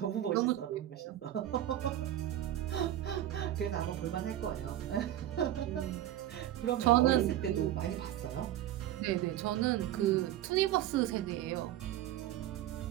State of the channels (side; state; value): left; quieter; 12.7 dB